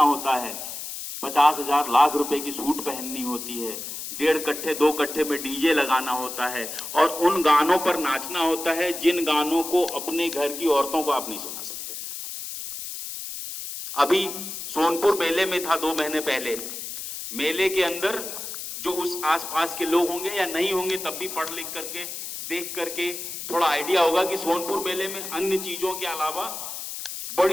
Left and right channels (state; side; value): noise; left; hiss, 8 dB below the sound